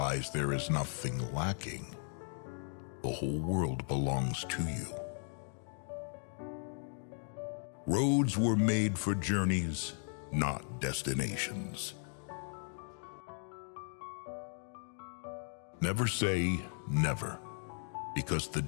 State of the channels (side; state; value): right; silent; 53 dB below the other